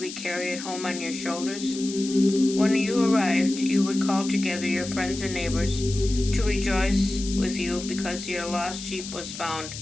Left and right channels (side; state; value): left; noise; hiss, 10 dB below the sound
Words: carry it home on your shoulders? When you arrived, you would call together your friends and neighbors to rejoice with you because your lost sheep was found.